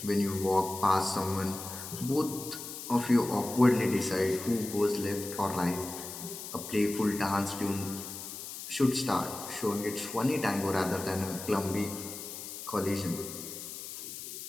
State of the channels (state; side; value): noise; left; hiss, 9 dB below the sound